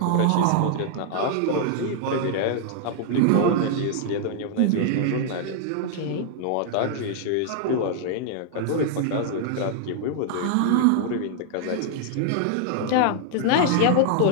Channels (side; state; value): both; different; correlation -0.01